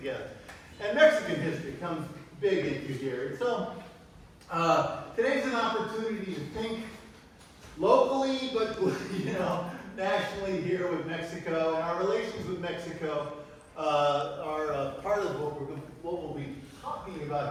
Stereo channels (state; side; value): identical; both; correlation 1.00